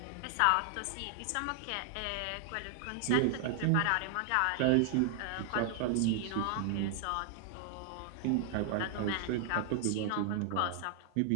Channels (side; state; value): both; different; correlation 0.00